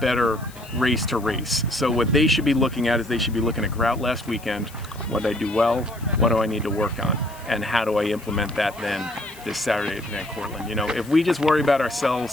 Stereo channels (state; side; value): noise; left; hiss, 21 dB below the sound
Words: race to race. So what they should be looking at is they should be looking at Grout last weekend. What did I do well? What do I need to work on? And how do I implement that then this Saturday at Van Cortlandt? You know, if we just worry about